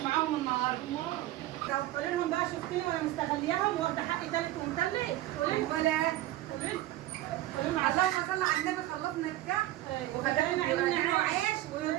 معاهم النهارده. لو تقولي لهم بقى شفتني وانا مستغلياهم واخده حقي تالت ومتلت. ولا قولي لهم اللهم صل على النبي. خلصنا الكحك وخلينا يعملوا عيش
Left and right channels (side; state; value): left; quieter; 15.5 dB